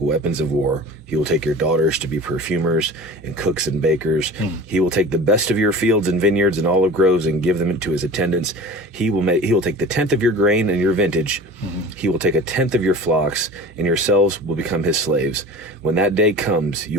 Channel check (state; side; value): normal; both; correlation 0.38